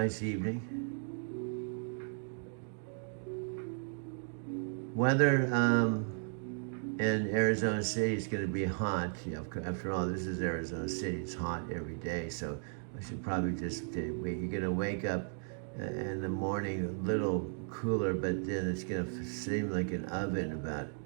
evening. Weather in Arizona City is going to be hot. After all, this is Arizona City. It's hot every day, so I should probably just wait. You're going to wake up in the morning a little cooler, but then it's going to seem like an oven about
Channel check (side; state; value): left; silent; 54 dB below the other